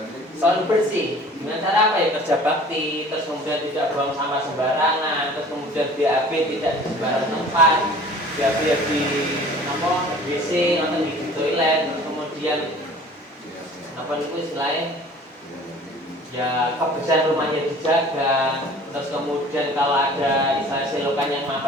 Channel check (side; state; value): both; normal; correlation 0.47